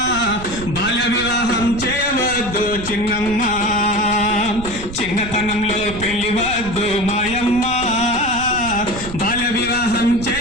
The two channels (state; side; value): noise; right; rumble, 12 dB below the sound